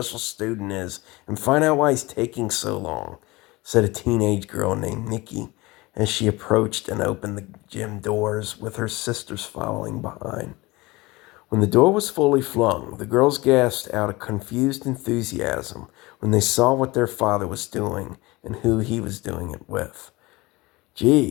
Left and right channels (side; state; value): right; quieter; 22.0 dB